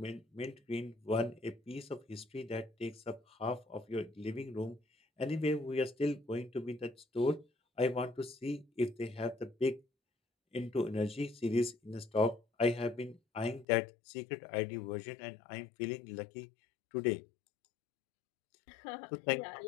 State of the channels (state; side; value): drops out; right; at 13.7 s